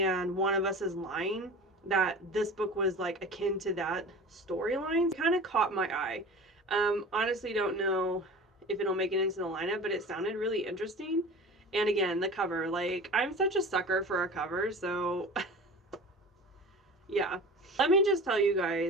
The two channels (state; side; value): normal; both; correlation 0.36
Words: one of us is lying, that this book was like akin to that storyline. Kind of caught my eye. Honestly, don't know if it'll make it into the lineup, but it sounded really interesting. And again, the cover, like, I'm such a sucker for a cover, so yeah. Let me just tell you